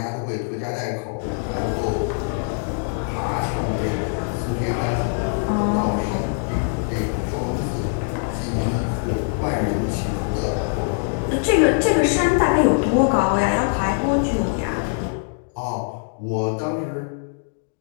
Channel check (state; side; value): silent; right; 61 dB below the other